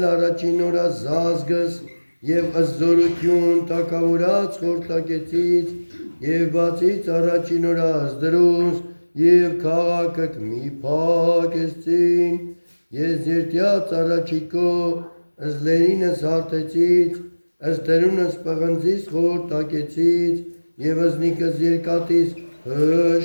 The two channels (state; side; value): inverted; both; correlation -1.00